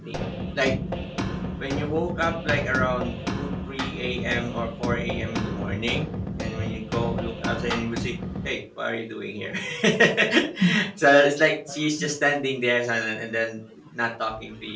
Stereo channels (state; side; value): identical; both; correlation 1.00